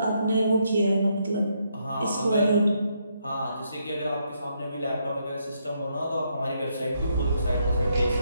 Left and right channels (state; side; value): inverted; both; correlation -0.76